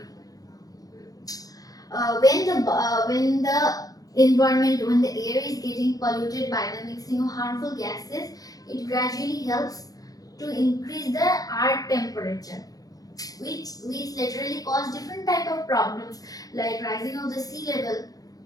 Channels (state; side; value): late; right; 0.18 ms